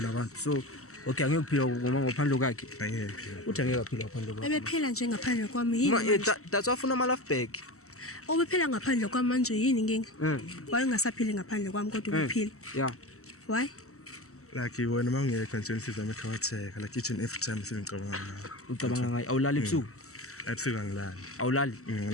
abantu. So okay angeke kuphila ngoma ngaphandle kwakhe. angephi Uthi angeke aphila ngaphandle kwakhe. Ebephela nje ngaphandle kwami yini? manje? That's wafuna ama life back. Obephela ngaphandle kwami manje yini inkinga? Why ungasaphili ngaphandle kwami kodwa uphila? Yeah. Why? like wena mawungekho nje nisizame ekhawatheka like each and every time sengicabanga ngayo Ucabanga ngayo awulali ebusuku? ebusuku angilali Awulali?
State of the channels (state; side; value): late; right; 0.64 ms